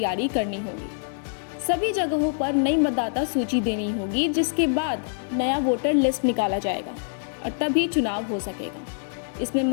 करनी होगी। सभी जगहों पर नई मतदाता सूची देनी होगी, जिसके बाद नया वोटर लिस्ट निकाला जाएगा और तभी चुनाव हो सकेगा। इसमें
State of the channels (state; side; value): silent; right; 62 dB below the other